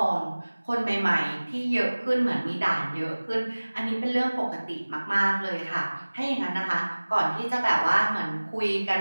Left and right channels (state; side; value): inverted; both; correlation -1.00